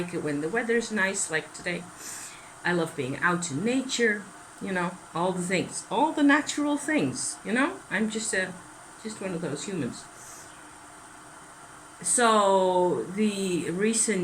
it when the weather's nice, like today. I love being out in nature. All the things, all the natural things. I'm just one of those humans. So the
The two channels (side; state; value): both; identical; correlation 1.00